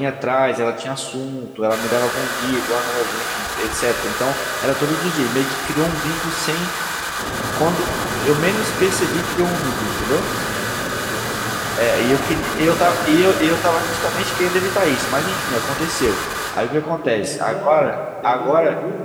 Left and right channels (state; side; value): identical; both; correlation 1.00